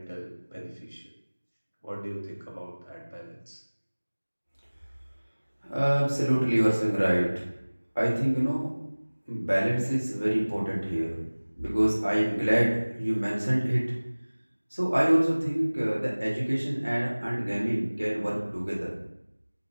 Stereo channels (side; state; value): both; inverted; correlation -1.00